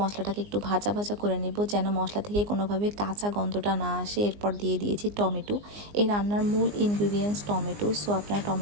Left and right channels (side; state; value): left; late; 19 ms